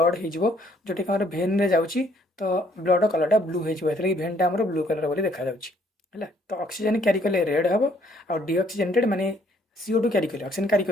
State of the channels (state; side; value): normal; both; correlation 0.65